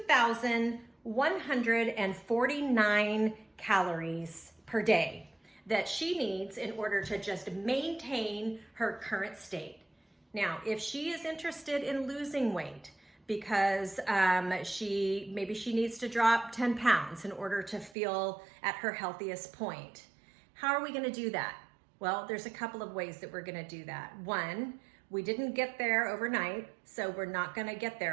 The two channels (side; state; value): left; drops out; at 17.9 s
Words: calories per day that she needs in order to just maintain her current state. Now, if she is interested in losing weight because maybe she needs to drop 10 pounds in order to feel at her healthiest point, how are we going to do that? Well, there's a couple of ways that we're going to do that. One, we didn't get there overnight, so we're not going to get